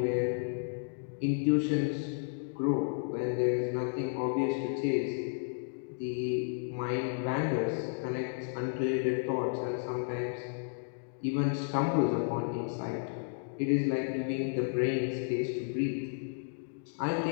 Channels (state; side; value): silent; right; digital silence